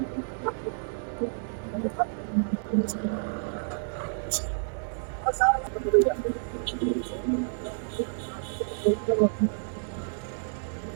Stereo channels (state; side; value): silent; left; digital silence